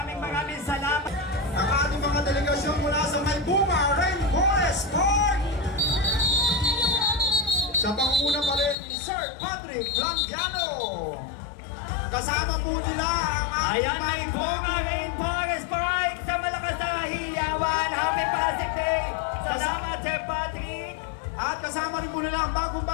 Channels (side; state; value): right; drops out; at 8.8 s